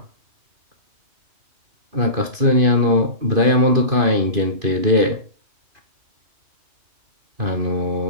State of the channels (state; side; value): late; left; 2.5 ms